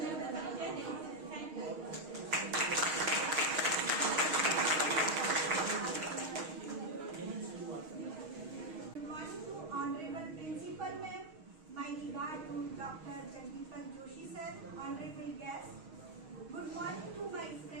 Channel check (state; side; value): late; left; 6.4 ms